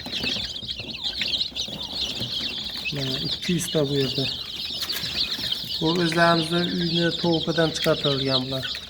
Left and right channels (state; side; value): identical; both; correlation 1.00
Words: Mana 200 ta bu yerda. Bu o'zlarimizning uyni tovuqidan chiqartirilgan bular.